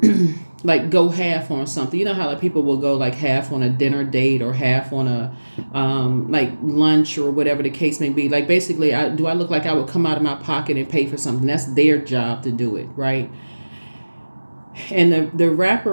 like go half on something. You know how like people will go like half on a dinner date or half on a like lunch or whatever the case may be. Like basically, do I look like I would come out of my pocket and pay for something? That's their job to do it, right? And the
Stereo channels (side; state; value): both; inverted; correlation -1.00